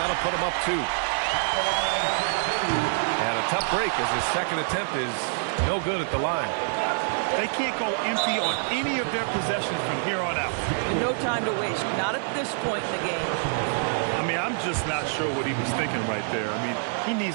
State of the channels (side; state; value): left; silent; 61 dB below the other